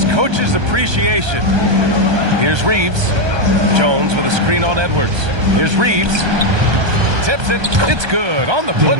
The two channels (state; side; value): late; left; 1.3 ms